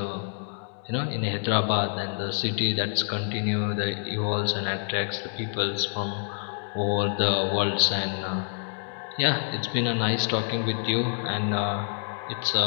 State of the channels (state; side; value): silent; right; digital silence